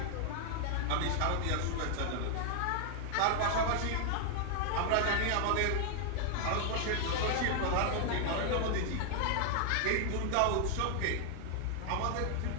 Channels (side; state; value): both; different; correlation 0.00